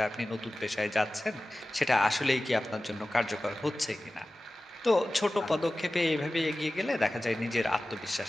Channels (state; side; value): normal; both; correlation 0.96